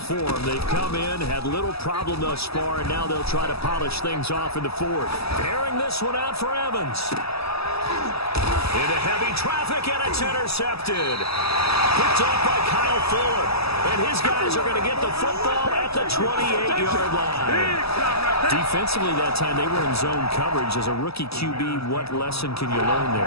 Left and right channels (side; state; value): right; late; 0.78 ms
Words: They've come in, had little problem thus far, and now they'll try to polish things off in the 4th. Airing this one out for Evans. Into heavy traffic, and it's intercepted. Picked off by Kyle Fuller. And his guys are going to get the football at the 28-yard line. Defensively that time, they were in zone coverage. As a rookie QB, what lesson can you learn